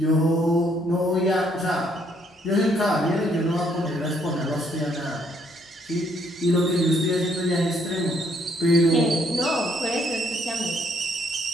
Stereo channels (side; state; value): both; normal; correlation 0.69